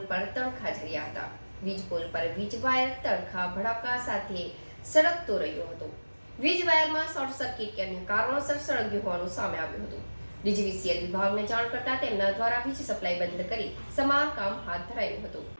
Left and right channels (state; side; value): inverted; both; correlation -1.00